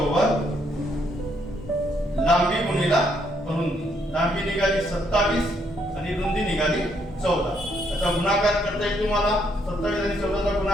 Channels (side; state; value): both; normal; correlation 0.72